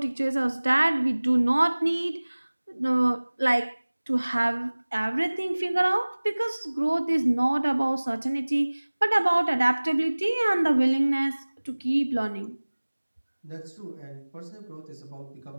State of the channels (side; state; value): both; inverted; correlation -1.00